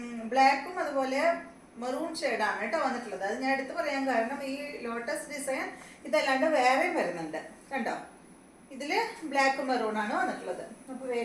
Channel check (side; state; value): both; identical; correlation 1.00